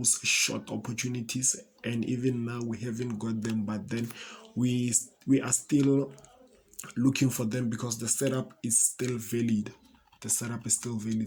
short opportunities, and even now we haven't got them, but then we are still looking for them because the setup is still valid. The setup is still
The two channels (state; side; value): identical; both; correlation 1.00